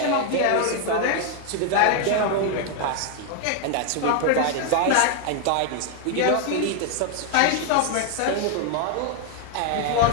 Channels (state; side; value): different; both; correlation 0.00